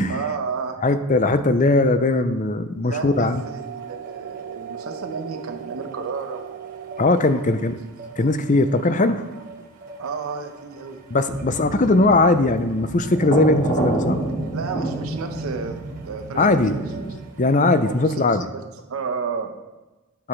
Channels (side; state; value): both; normal; correlation 0.32